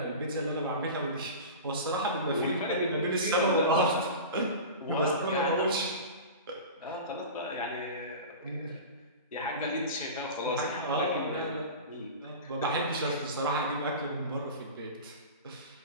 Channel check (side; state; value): both; inverted; correlation -0.31